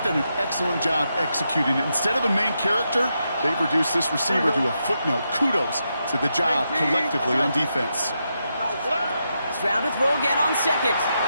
done an excellent job executing it. Instead of a main character, they've reduced this receiver to a footnote. Kudos to the job collectively on defense. Stroud to throw again on second.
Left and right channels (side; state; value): both; inverted; correlation -0.84